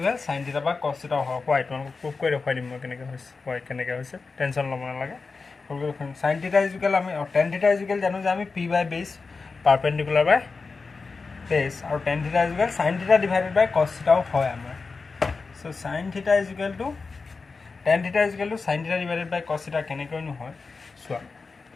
সাইন থিটা বা কছ থিটাও হয় হোৱাই তোমালোকক প্ৰুফ কৰি দেখুৱাই দিম মই কেনেকৈ হৈছে হোৱাই কেনেকৈ হৈছে টেনশ্যন ল'ব নালাগে সাইন থিটা ইকুৱেল আমি টেন থিটা ইকুৱেল জানো যে আমি p/বেছ পাৰপেণ্ডিকুলাৰ বাই বেছ আৰু tan theta equal sine theta divided by cos থিটাও হয় আমাৰ চ' sine theta equal to tan theta equal to sine theta divided by cos theta কেনেকৈনো হয় চোৱা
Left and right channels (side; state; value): right; quieter; 4.4 dB